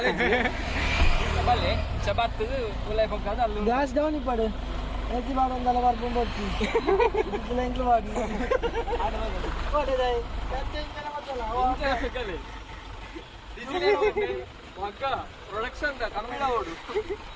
ಬಲ್ಲೆ ಚಬಾತ್ ಉಲೈ ಪಕ್ಕದ ಅಲ್ಲಿ ಗ್ಯಾಸ್ ಡೌನ್ ಇಪ್ಪಡು ಎತ್ತಿ ಬಾಡೊಂದಲ್ಲ ಬರ್ಕೊಂಡು ಹೋಗ್ತಿ ಇದೆಲ್ಲ ಎಂಕ್ಲು ಮಾಡಿ ಓಡೇದಾಯ್ ಕಚ್ಚೆಂಚನ ಮತ್ತಲ್ಲ ಇಂಚನ ಫೆಕಲೆ ಮಕ್ಕ ಪ್ರೊಡಕ್ಷನ್ ದ ಕನ್ನಡ ಓಡು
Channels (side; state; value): both; identical; correlation 1.00